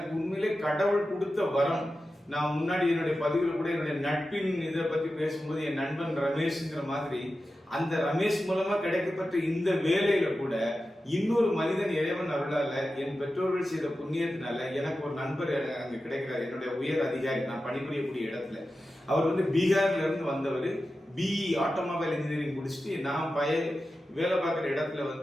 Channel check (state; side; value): normal; both; correlation 0.92